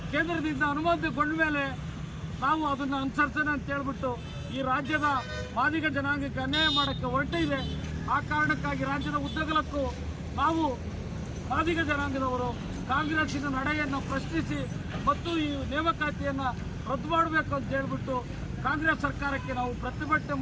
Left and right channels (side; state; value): both; identical; correlation 1.00